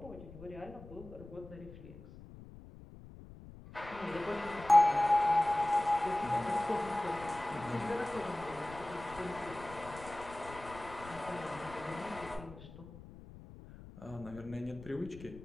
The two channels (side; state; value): left; noise; rumble, 16 dB below the sound